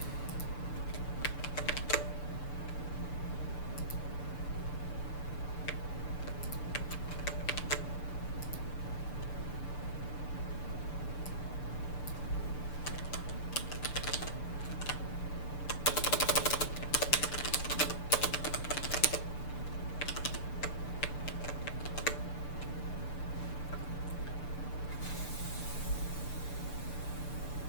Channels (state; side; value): late; right; 6.8 ms